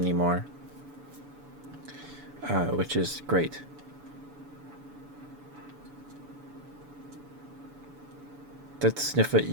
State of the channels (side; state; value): left; late; 7.0 ms